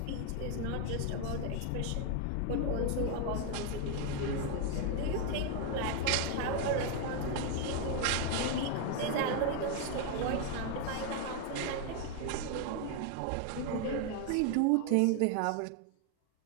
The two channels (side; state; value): both; different; correlation 0.01